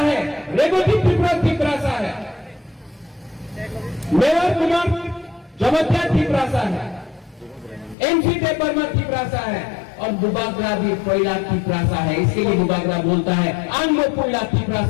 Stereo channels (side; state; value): right; drops out; at 8.0 s